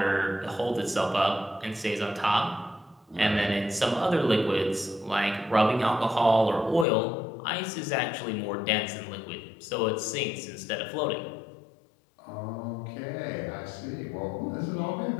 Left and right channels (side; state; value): right; drops out; at 6.9 s